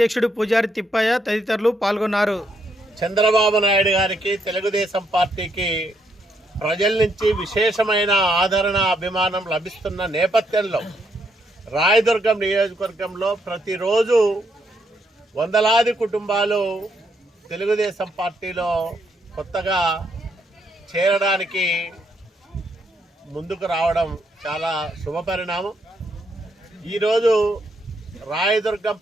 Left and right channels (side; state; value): both; normal; correlation 0.75